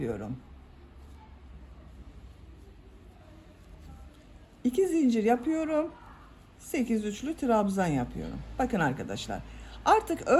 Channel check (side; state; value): both; identical; correlation 1.00